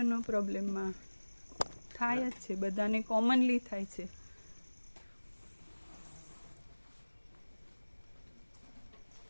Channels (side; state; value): both; inverted; correlation -1.00